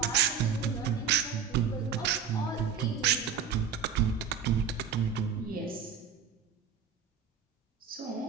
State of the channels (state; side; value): quieter; left; 7.1 dB